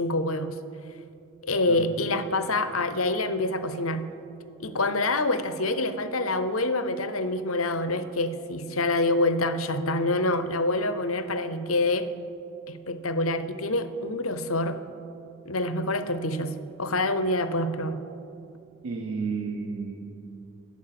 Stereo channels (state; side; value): normal; both; correlation -0.19